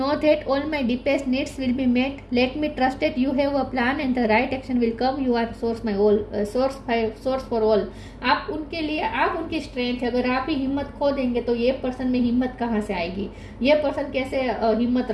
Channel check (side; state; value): both; identical; correlation 1.00